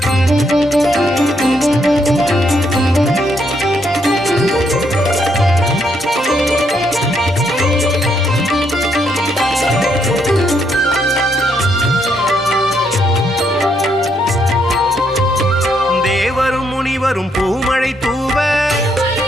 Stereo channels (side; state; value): both; normal; correlation 0.74